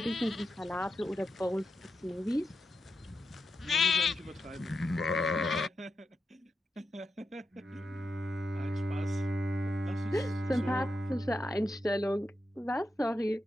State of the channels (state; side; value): normal; both; correlation 0.87